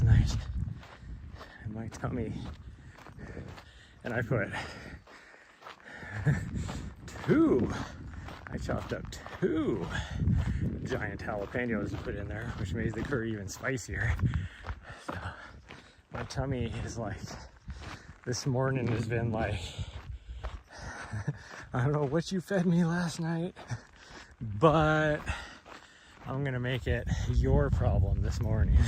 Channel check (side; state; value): both; identical; correlation 1.00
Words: night in my tummy, and I put I chopped up 2 giant jalapenos to put in there, which made the curry even spicier. So my tummy is like, this morning has been like, I don't know what you fed me last night, but I'm gonna make it your problem this morning.